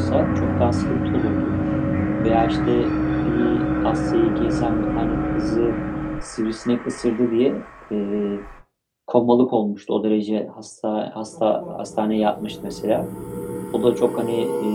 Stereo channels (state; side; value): identical; both; correlation 1.00